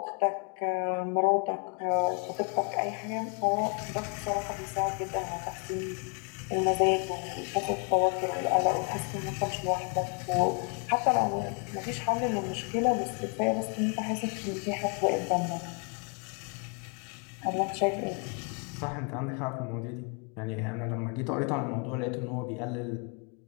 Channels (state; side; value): quieter; right; 36.5 dB